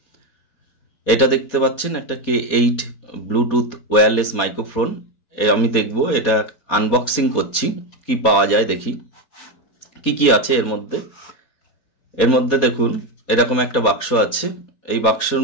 এটা দেখতে পাচ্ছেন একটা K8 ব্লুটুথ ওয়্যারলেস মাইক্রোফোন। আমি দেখব, এটা আনবক্সিং করছি, কি পাওয়া যায় দেখি কি কি আছে এর মধ্যে। এর মধ্যে দেখুন এরকম একটা বাক্স আছে। এই বাক্সের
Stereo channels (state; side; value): late; right; 4.2 ms